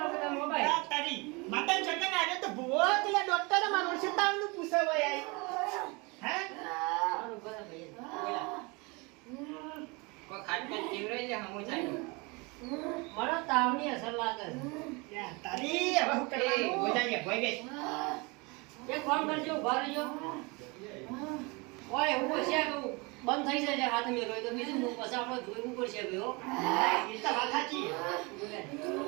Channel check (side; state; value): left; quieter; 27.7 dB